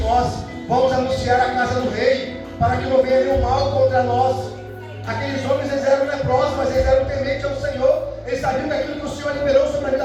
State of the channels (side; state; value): both; identical; correlation 1.00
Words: nós, vamos anunciar a casa do rei, para que não venha nenhum mal contra nós. Aqueles homens, eles eram leprosos, mas eles eram tementes ao Senhor. Eles sabiam que aquilo que o Senhor liberou sobre a vida